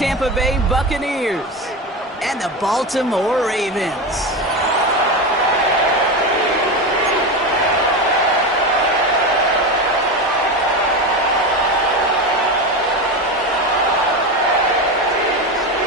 Bay Buccaneers and the Baltimore Ravens.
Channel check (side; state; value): both; normal; correlation 0.19